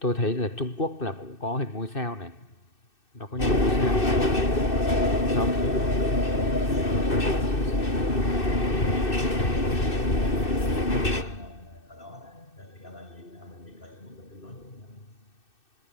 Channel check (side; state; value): right; late; 2.6 ms